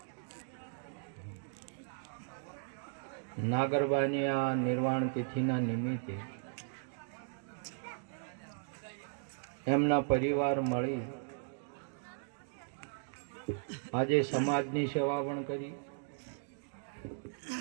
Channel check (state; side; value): silent; left; digital silence